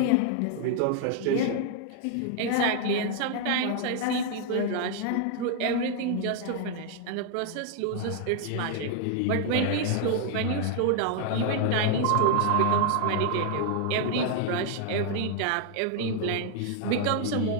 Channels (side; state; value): both; different; correlation 0.00